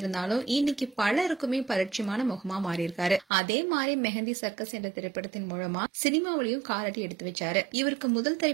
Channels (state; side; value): drops out; left; at 3.2 s